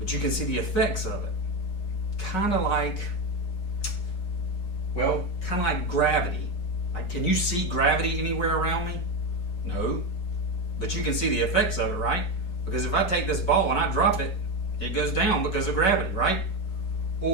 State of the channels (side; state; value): right; late; 5.3 ms